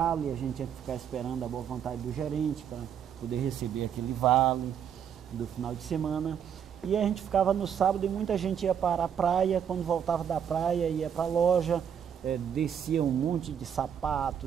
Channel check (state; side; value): quieter; left; 8.4 dB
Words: a gente tinha que ficar esperando a boa vontade do gerente para poder receber aquele vale do final de semana. E a gente ficava no sábado e muita gente ia para a praia, quando voltava da praia ia para a loja, descia um monte de